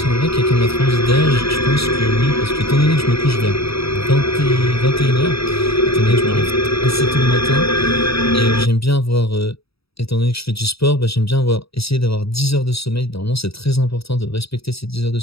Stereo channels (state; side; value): late; right; 0.77 ms